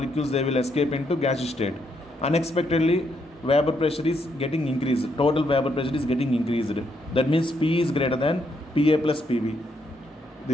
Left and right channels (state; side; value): normal; both; correlation 0.76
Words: they will escape into gaseous state. Unexpectedly, vapor pressure is getting increased. Total vapor pressure is getting increased. That means P is greater than PA plus PB.